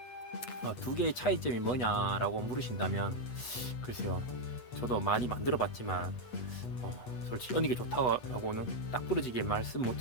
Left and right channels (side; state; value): right; late; 8.2 ms